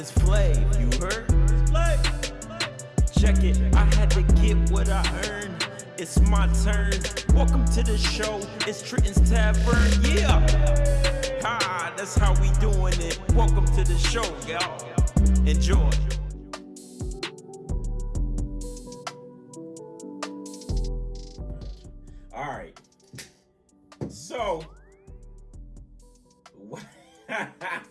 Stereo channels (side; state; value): both; identical; correlation 1.00